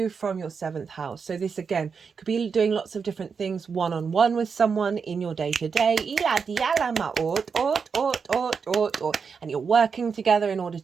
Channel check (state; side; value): quieter; left; 5.8 dB